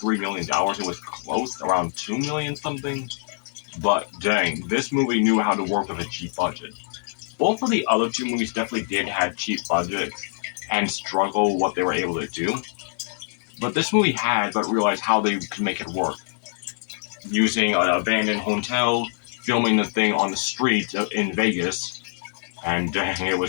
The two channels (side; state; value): right; silent; digital silence